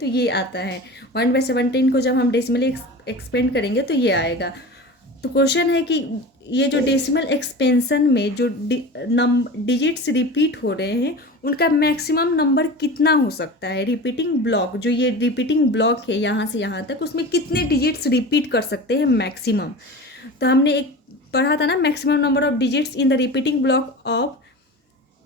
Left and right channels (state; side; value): normal; both; correlation 0.32